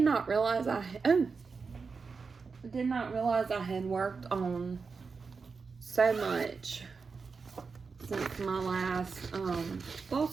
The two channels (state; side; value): quieter; left; 4.9 dB